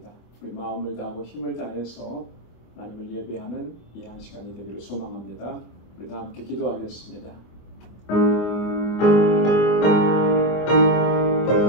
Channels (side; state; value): right; late; 25 ms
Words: 우리 마음을 다하고 힘을 다해서 하나님을 예배하는 이 한 시간이 되기를 소망합니다. 우리 다 함께 기도하겠습니다.